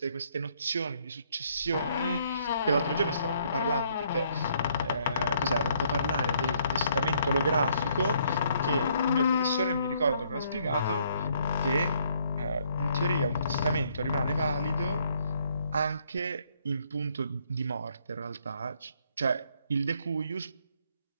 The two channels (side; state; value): both; inverted; correlation -0.67